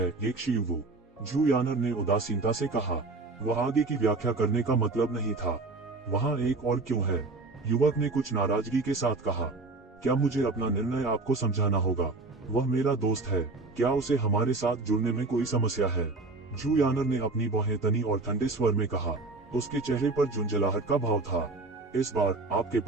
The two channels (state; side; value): quieter; left; 3.5 dB